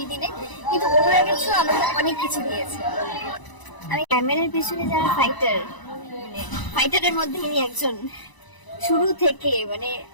দিনে, কিন্তু ওগুলোর কিছু আমাকে অনেক কিছু দিয়েছে। আমি ক্যামেরার পিছনে যারা ফাইটার, মানে ফাইটারের মধ্যে ইনি একজন। শুরু থেকে মানে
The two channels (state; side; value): late; right; 1.0 ms